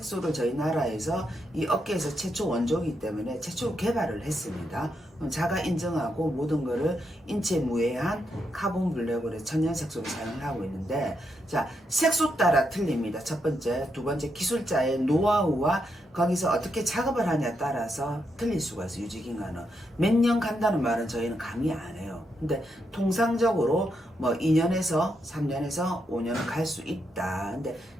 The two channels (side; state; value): both; normal; correlation 0.81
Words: 저희 나라에서 이 업계에서 최초 원조이기 때문에 최초 개발을 했습니다. 자가 인정하고 모든 거를 인체 무해한 카본 블랙으로 천연 색소를 사용을 하고 있는데, 자, 색소 따라 틀립니다. 첫 번째, 두 번째, 기술자의 노하우와 거기서 어떻게 작업을 하냐에 따라서 틀릴 수가 있어요. 유지기간은 몇 년 간다는 말은 저희는 감히 안 해요. 근데 통상적으로 뭐 2년에서 3년에서 5년은 갈 수 있다. 근데